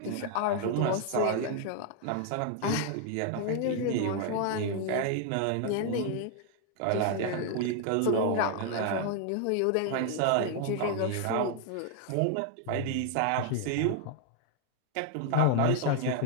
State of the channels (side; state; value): both; different; correlation 0.00